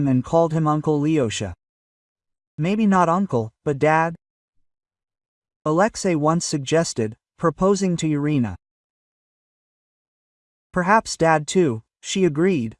and called him Uncle Lyosha. "Maybe not uncle, but dad?" Alexei once suggested, proposing to Irina. "Perhaps dad too," she agreed,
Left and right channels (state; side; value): identical; both; correlation 1.00